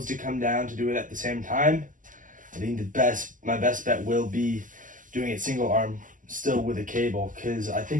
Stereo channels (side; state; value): left; late; 0.38 ms